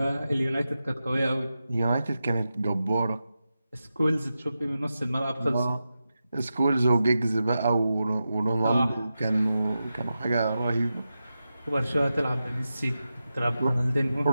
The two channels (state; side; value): inverted; both; correlation -0.91